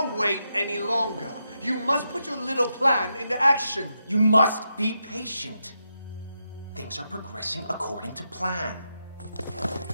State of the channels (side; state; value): both; inverted; correlation -0.84